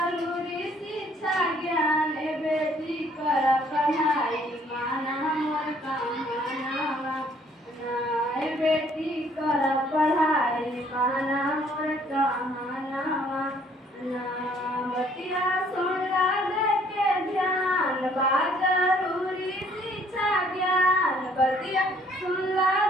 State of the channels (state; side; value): normal; both; correlation 0.61